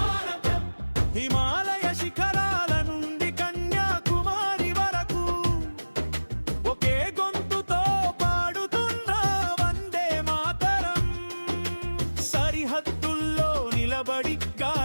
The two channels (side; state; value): both; inverted; correlation -1.00